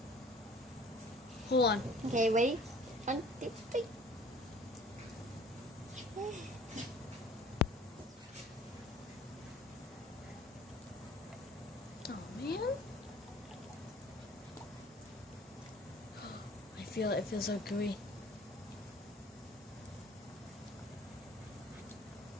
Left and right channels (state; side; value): normal; both; correlation 0.49